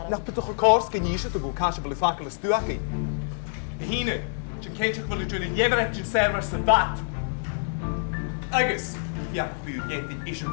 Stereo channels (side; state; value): right; silent; digital silence